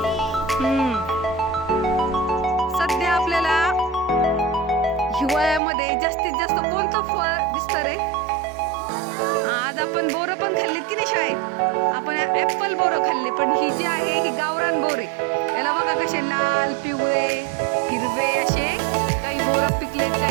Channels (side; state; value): left; drops out; at 5.6 s